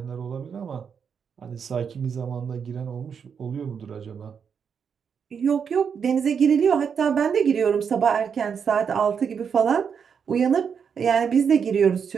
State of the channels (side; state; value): left; quieter; 6.8 dB